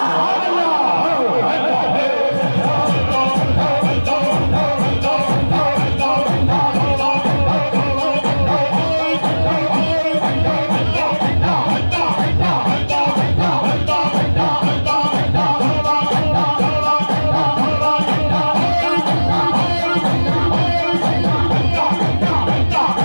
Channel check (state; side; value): inverted; both; correlation -1.00